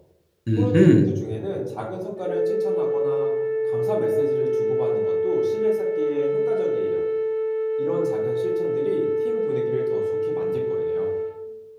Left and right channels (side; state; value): both; identical; correlation 1.00